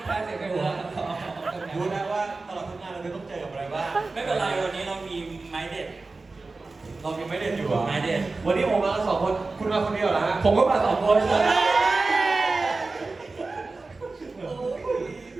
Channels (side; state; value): left; quieter; 3.7 dB